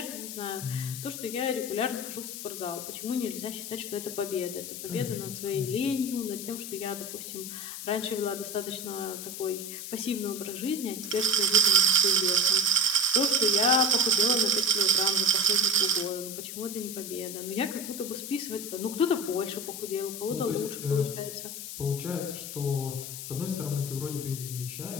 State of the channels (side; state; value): left; noise; hiss, 8 dB below the sound